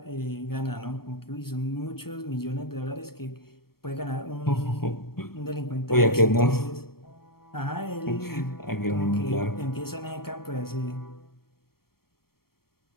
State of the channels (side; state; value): right; late; 0.94 ms